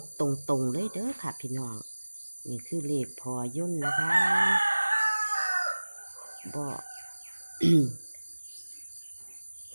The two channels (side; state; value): both; inverted; correlation -1.00